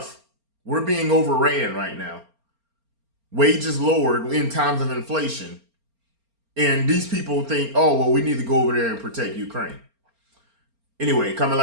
We're being overran right now. Wages lowered in times of inflation. And these people think, oh, well, we need to go over there and protect Ukraine. Anyway, comment,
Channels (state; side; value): late; left; 4.3 ms